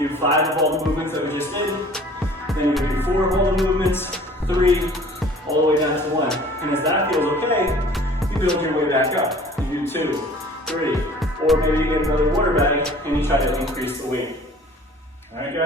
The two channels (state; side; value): normal; both; correlation 0.49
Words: do 5 of all the movements that we just did. Then you do 4 of all the movements, 3, all the way down to 1. And as that feels okay, you build your way back up. You do 2, 3, or maybe you get another water bag and you try to increase the weight. All right,